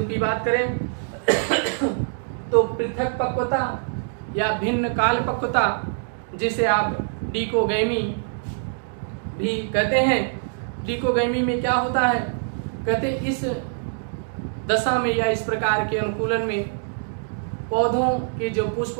की बात करें तो पृथक पक्वता या भिन्न काल पक्वता, जिसे आप डिकोगैमी भी कहते हैं। डिकोगैमी में क्या होता है, कहते इस दशा में या इस प्रकार के अनुकूलन में पौधों के जो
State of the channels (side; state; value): left; silent; digital silence